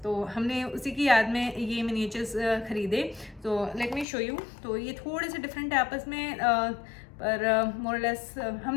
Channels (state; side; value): drops out; right; at 4.0 s